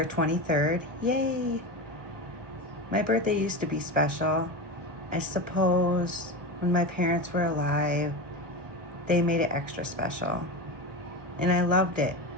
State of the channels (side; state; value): left; late; 1.1 ms